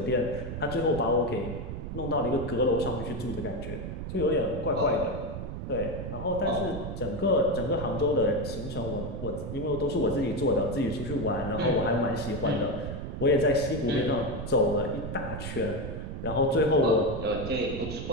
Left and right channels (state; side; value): noise; right; rumble, 6 dB below the sound